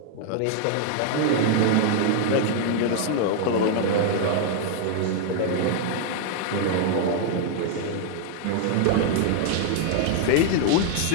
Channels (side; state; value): both; different; correlation 0.00